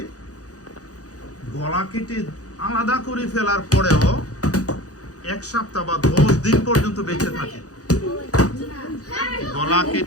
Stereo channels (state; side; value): late; right; 0.67 ms